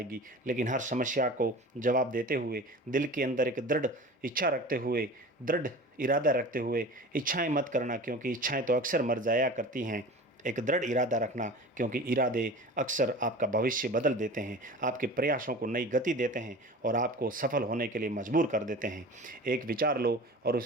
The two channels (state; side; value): normal; both; correlation 0.37